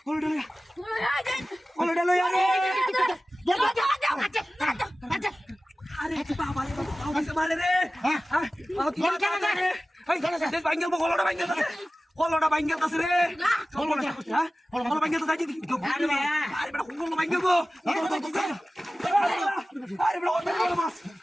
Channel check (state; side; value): normal; both; correlation 0.96